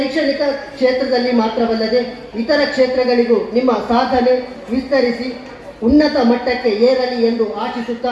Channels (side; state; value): both; identical; correlation 1.00